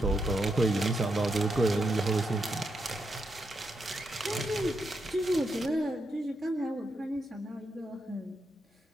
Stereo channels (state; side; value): normal; both; correlation 0.83